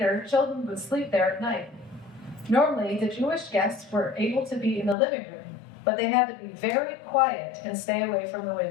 children would sleep there at night. Normally, the Jewish guests were able to be in the living room, but they had to be very quiet and stay away from the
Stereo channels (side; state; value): right; drops out; at 5.0 s